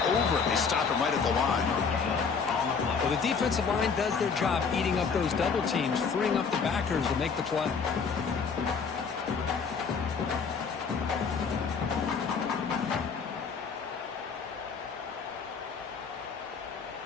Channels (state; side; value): quieter; right; 5.6 dB